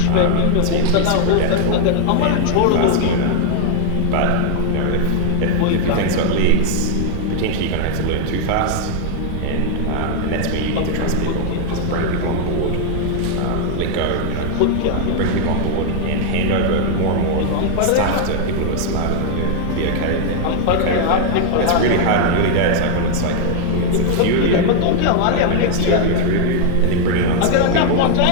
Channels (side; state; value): both; different; correlation 0.00